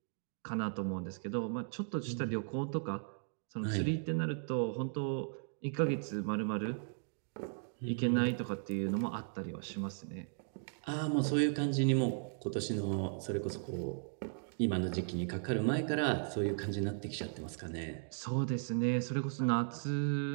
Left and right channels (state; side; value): silent; left; digital silence